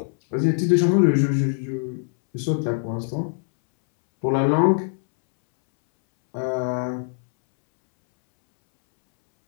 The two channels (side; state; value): right; silent; 64 dB below the other